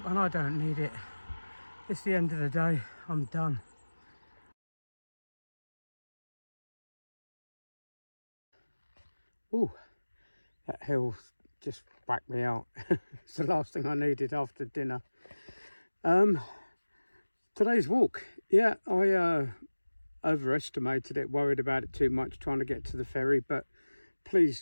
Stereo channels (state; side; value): inverted; both; correlation -1.00